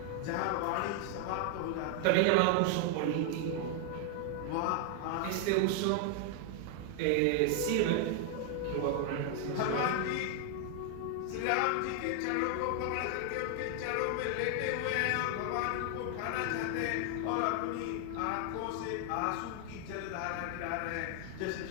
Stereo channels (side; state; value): both; different; correlation 0.00